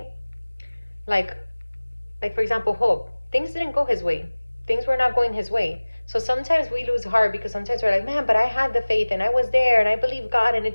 Like for example, Hope, things didn't go his way. Things were not going his way. So sometimes we lose heart because sometimes we're like, man, but I had the faith and I was there and I believed God and it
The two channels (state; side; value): inverted; both; correlation -1.00